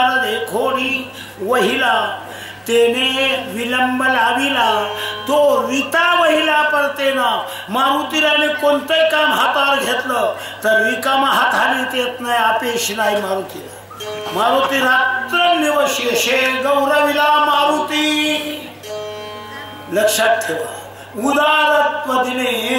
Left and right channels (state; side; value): identical; both; correlation 1.00